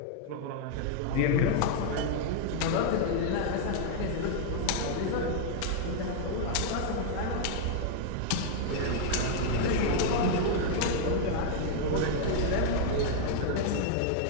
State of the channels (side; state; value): both; different; correlation 0.00